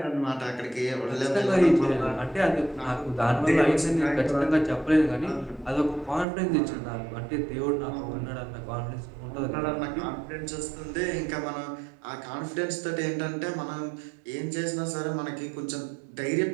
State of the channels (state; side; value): drops out; left; at 6.2 s